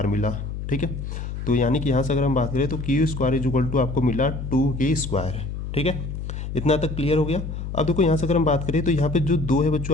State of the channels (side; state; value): left; noise; hum, 6 dB below the sound